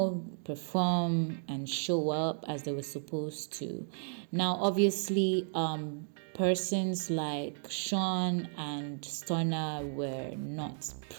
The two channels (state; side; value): silent; left; digital silence